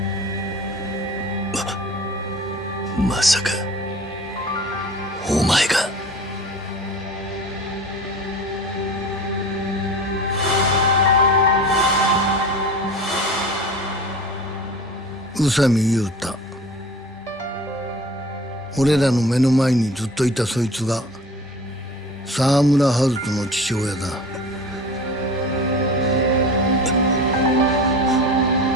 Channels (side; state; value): both; normal; correlation 0.39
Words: まさかお前が。宇佐美雄太。俺らの目の前にずっといたそいつが沢村春人の父親だ。